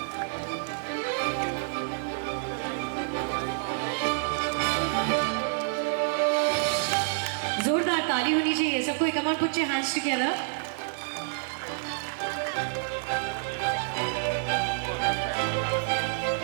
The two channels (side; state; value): left; silent; 57 dB below the other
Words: सबको, come on, put your hands together.